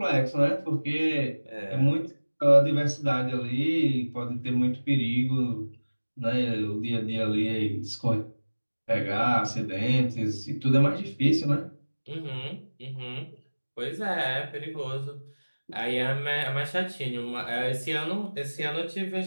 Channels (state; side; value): inverted; both; correlation -1.00